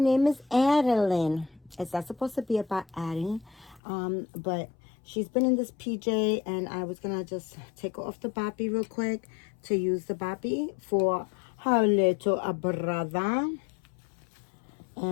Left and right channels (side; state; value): right; drops out; at 3.8 s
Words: name is Adeline. It's not supposed to be about Addie, but she's been in this PJ and I was gonna just take her off the boppy real quick to use the boppy for her little brother.